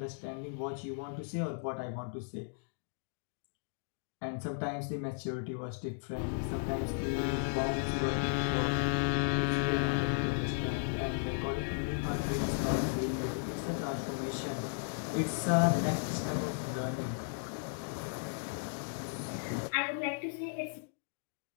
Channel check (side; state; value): right; silent; digital silence